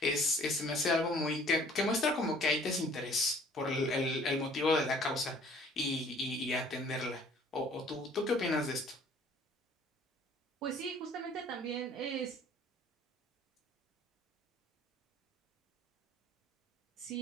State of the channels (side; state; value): both; normal; correlation 0.54